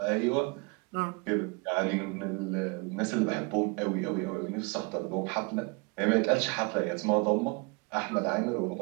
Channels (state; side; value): quieter; left; 29.9 dB